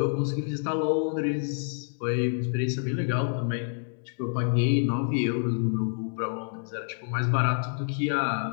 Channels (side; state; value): right; silent; 59 dB below the other